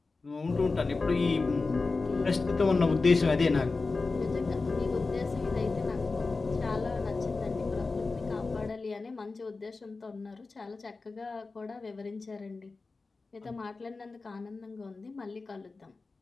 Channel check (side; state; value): right; quieter; 3.9 dB